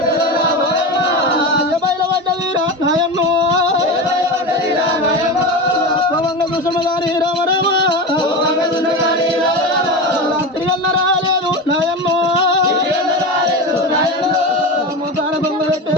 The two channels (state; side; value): normal; both; correlation 0.23